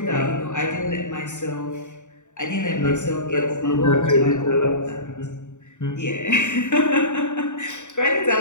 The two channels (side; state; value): right; late; 0.85 ms